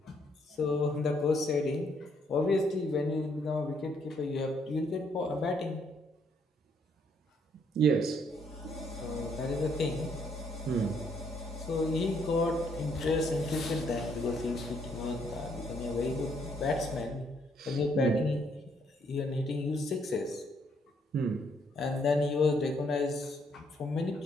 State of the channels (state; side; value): normal; both; correlation 0.70